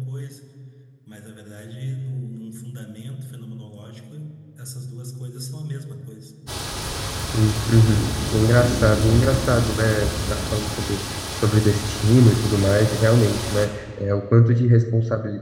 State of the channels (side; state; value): both; identical; correlation 1.00